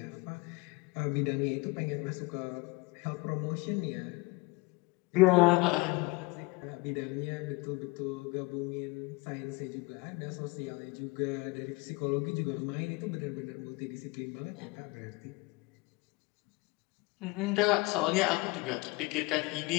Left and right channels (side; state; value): right; quieter; 25.1 dB